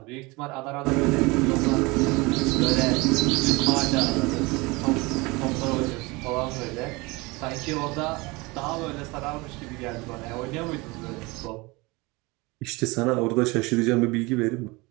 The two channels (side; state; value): left; quieter; 24.4 dB